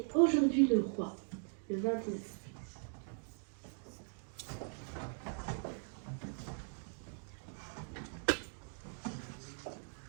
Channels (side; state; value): left; silent; 51 dB below the other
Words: Aujourd'hui le roi, le 29.